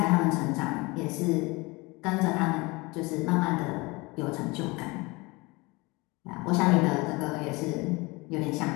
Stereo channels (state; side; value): quieter; right; 24.6 dB